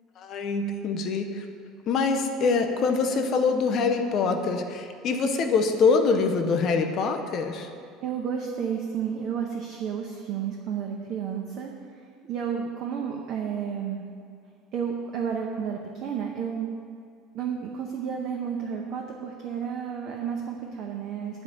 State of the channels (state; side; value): normal; both; correlation 0.41